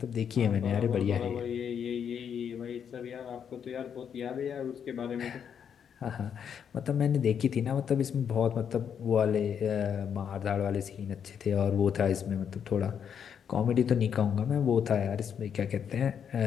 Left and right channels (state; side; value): quieter; right; 7.9 dB